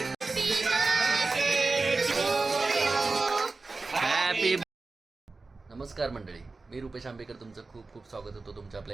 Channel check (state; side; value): quieter; left; 3.7 dB